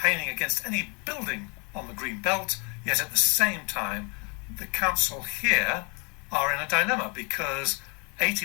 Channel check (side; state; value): right; quieter; 34.0 dB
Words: against any building on the green belt, yet at the same time, the council here are in a dilemma because